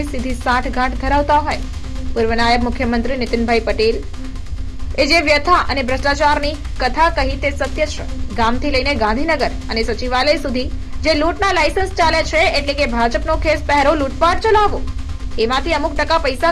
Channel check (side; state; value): both; identical; correlation 1.00